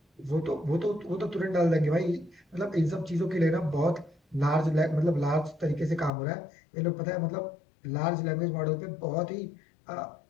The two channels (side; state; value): right; drops out; at 6.1 s